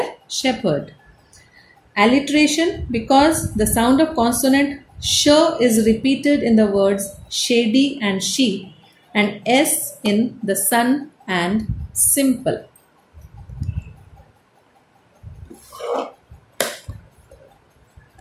shepherd. Alliteration, because the sound of consonant sh is repeated in the words shady and sheep and s in the sun and simple.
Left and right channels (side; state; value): both; identical; correlation 1.00